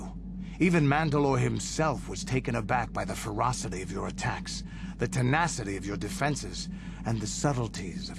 Even Mandalore himself was taken aback by the ferocity of your attacks, the tenacity of your defenses, and the subtleties of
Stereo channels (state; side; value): identical; both; correlation 1.00